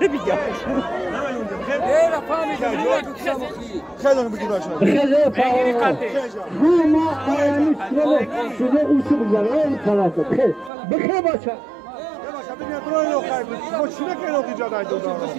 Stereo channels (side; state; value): left; drops out; at 10.7 s